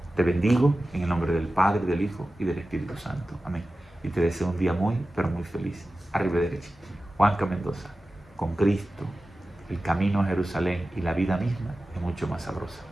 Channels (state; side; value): normal; both; correlation 0.95